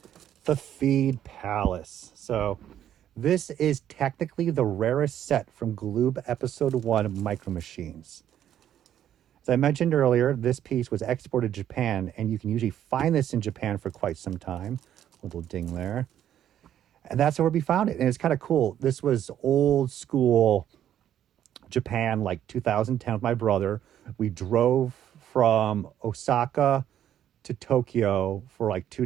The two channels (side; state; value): left; quieter; 10.7 dB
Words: the Feed Palace. So this is technically the rarest set from Gloob Episode 1 Micro Machines. As I mentioned earlier, this piece was exported to Japan, and you can usually find this in Japan for quite some time. Little ding there. And that's where we found it. And it's kind of cool. This was old school Japan, like 2010 with my brother. We drove from Osaka to Tokyo for like